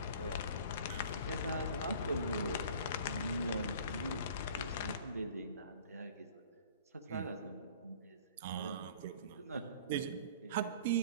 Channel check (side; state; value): both; inverted; correlation -0.46